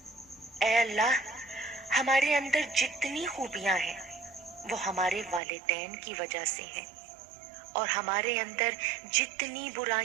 اے اللہ، ہمارے اندر جتنی خوبیاں ہیں وہ ہمارے والدین کی وجہ سے ہیں، اور ہمارے اندر جتنی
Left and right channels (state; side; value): drops out; left; at 5.4 s